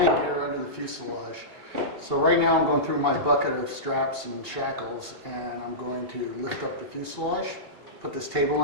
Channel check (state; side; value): late; left; 2.8 ms